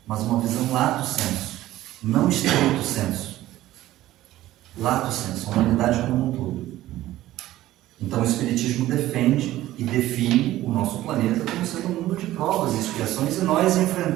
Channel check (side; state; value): left; quieter; 15.1 dB